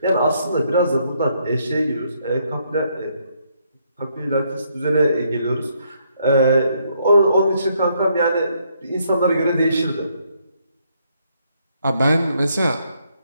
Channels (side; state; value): both; inverted; correlation -0.72